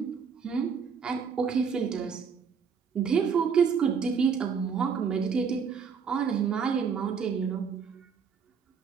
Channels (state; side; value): quieter; left; 6.3 dB